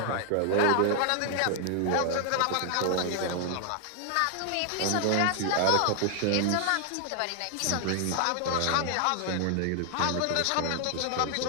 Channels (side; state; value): both; different; correlation 0.00